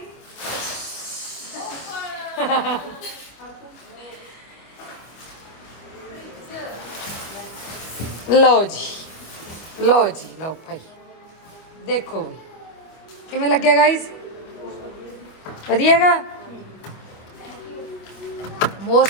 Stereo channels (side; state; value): right; late; 25 ms